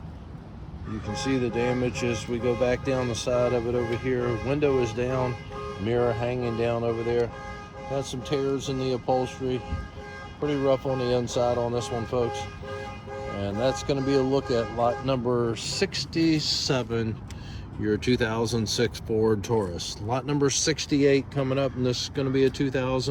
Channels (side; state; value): both; identical; correlation 1.00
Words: you can see the damage as we go back down the side of it over here. Window is down. Mirror hanging down over there. Got some tears in the upholstery. Pretty rough on the inside on this one, folks. And that's going to be a look at lot number 67, your 2006 Ford Taurus. Lot number 68 coming up, and this is going to be a